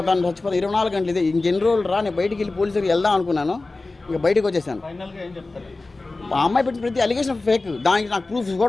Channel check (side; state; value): right; quieter; 3.3 dB